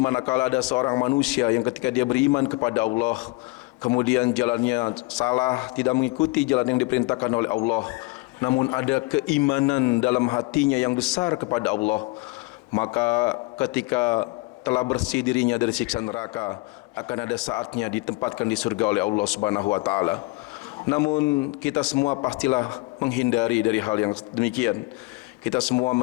ada seorang manusia yang ketika dia beriman kepada Allah, kemudian jalannya salah, tidak mengikuti jalan yang diperintahkan oleh Allah, namun ada keimanan dalam hatinya yang besar kepada Allah, maka ketika telah bersih dirinya dari siksa neraka, akan ada saatnya ditempatkan di surga oleh Allah Subhanahu wa taala. Namun kita semua pastilah menghindari dari hal yang demikian. Kita semua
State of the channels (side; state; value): right; quieter; 25.0 dB